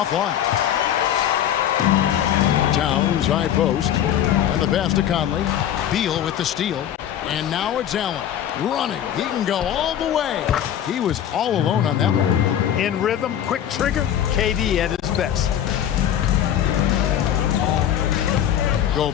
Towns, high post. And the pass to Conley. Beal with the steal. And now it's Allen. Running. He can go all the way. He was all alone on that one. In rhythm, quick trigger, KD at his best.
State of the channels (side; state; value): right; quieter; 10.4 dB